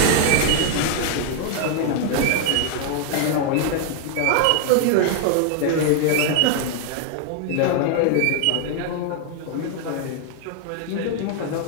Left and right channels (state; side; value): different; both; correlation 0.00